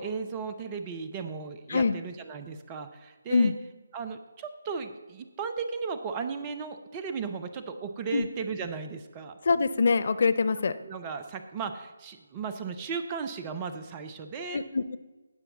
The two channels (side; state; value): both; inverted; correlation -0.78